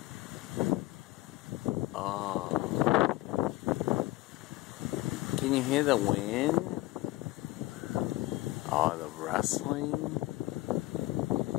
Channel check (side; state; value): right; quieter; 18.8 dB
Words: Oh. Can you hear the wind? Oh, the rustling